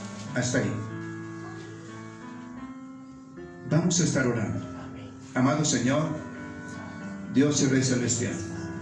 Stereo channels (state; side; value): identical; both; correlation 1.00